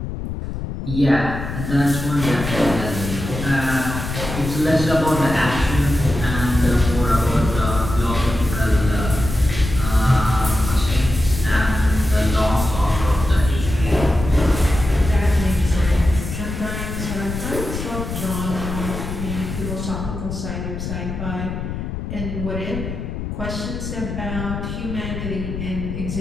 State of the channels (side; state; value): left; noise; rumble, 6 dB below the sound